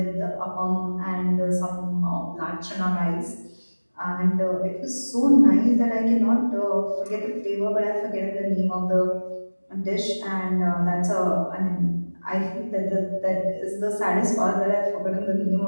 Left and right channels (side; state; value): both; inverted; correlation -1.00